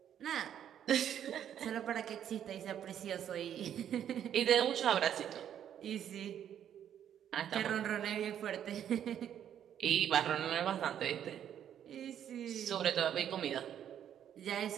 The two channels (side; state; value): left; quieter; 9.8 dB